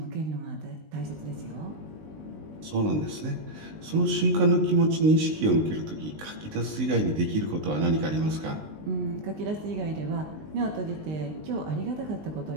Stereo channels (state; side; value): late; left; 19 ms